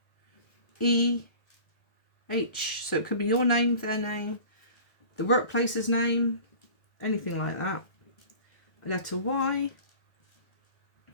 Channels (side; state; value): right; late; 1.7 ms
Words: E, H. So it could be your name, their name, the workplace's name, anything like that. A letter Y,